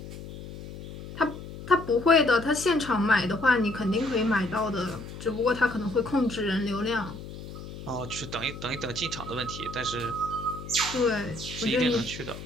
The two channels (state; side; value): noise; left; hum, 12 dB below the sound